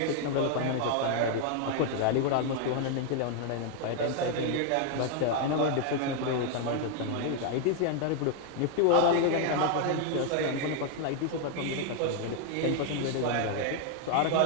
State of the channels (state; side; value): different; both; correlation 0.00